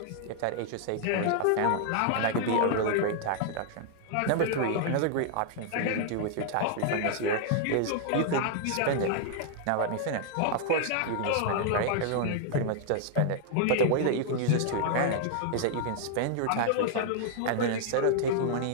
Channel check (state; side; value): different; both; correlation -0.01